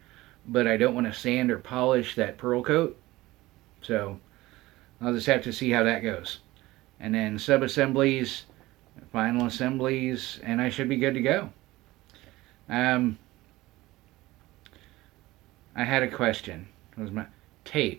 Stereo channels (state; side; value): quieter; left; 18.6 dB